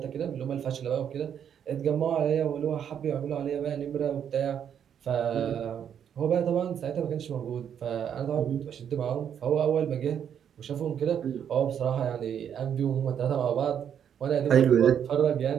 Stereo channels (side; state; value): left; quieter; 8.7 dB